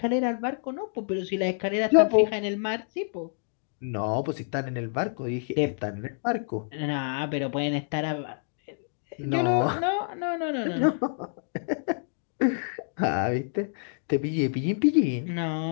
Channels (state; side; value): silent; right; digital silence